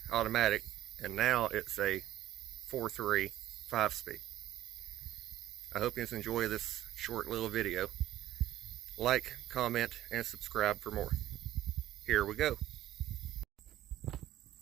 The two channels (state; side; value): quieter; left; 13.6 dB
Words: automatic and now it's a 4.3 5-speed. I hope you enjoy this short little video. Like, comment, and subscribe for more. Here we go.